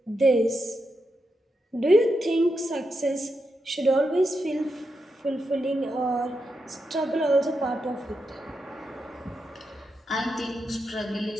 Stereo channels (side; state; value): both; normal; correlation 0.85